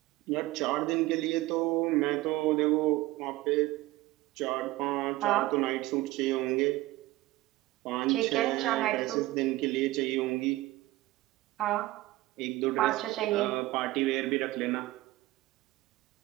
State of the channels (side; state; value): left; quieter; 18.1 dB